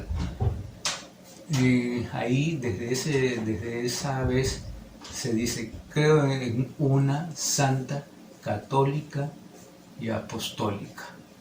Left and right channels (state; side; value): identical; both; correlation 1.00